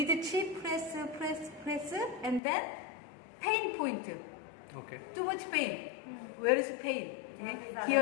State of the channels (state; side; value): drops out; right; at 2.4 s